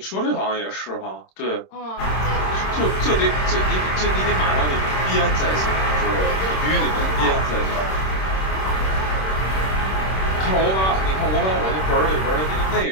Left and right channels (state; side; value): late; right; 26 ms